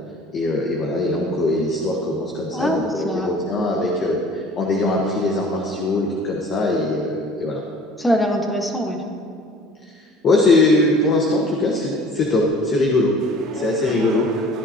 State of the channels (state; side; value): normal; both; correlation 0.48